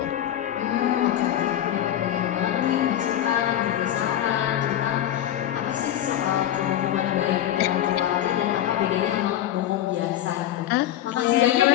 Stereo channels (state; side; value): quieter; right; 11.8 dB